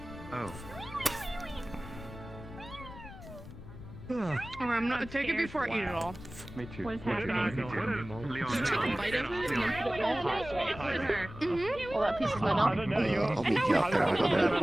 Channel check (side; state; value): left; noise; rumble, 14 dB below the sound